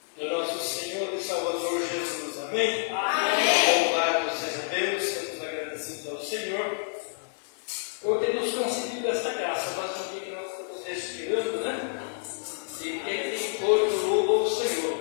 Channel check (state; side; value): silent; right; digital silence